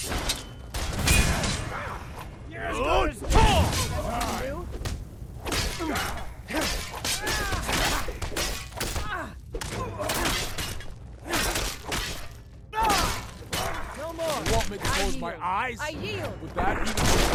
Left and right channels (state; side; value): identical; both; correlation 1.00